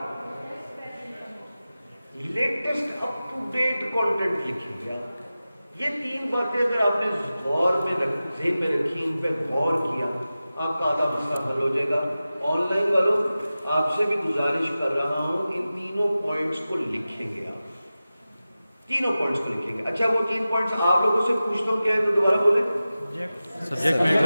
latest up to date content لکھیں گے. یہ 3 باتیں اگر آپ نے غور میں ذہن میں رکھی, ان پہ غور کیا, آپ کا آدھا مسئلہ حل ہو جائے گا. آن لائن والوں آپ سے بھی گزارش کر رہا ہوں ان تینوں پوائنٹس کو لکھیں گے. آپ تینوں پوائنٹس کو لکھیں گے. اچھا وہ 3 پوائنٹس آپ لوگوں سے پوچھتا ہوں, کیا ہے تو دوبارہ بولیں. سبجیکٹ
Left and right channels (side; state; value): both; inverted; correlation -0.95